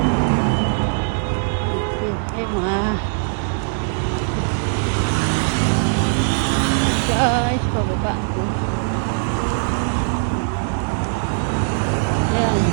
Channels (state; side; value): silent; left; 65 dB below the other